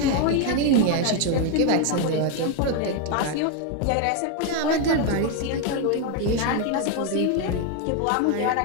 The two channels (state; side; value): different; both; correlation 0.01